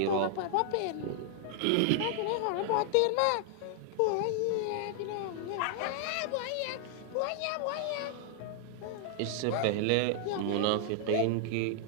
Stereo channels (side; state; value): both; different; correlation 0.00